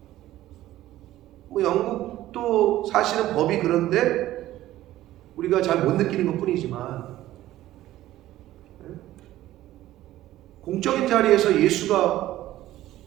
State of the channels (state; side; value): quieter; left; 14.7 dB